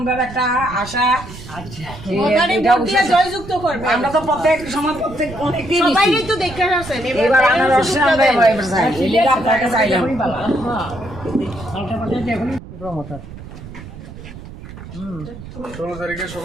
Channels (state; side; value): noise; right; rumble, 14 dB below the sound